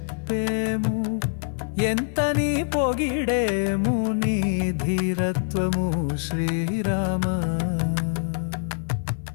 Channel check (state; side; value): silent; right; 62 dB below the other